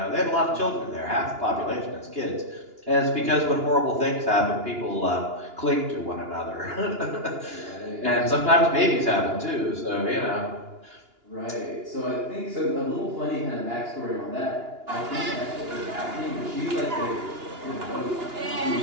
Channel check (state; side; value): late; left; 2.9 ms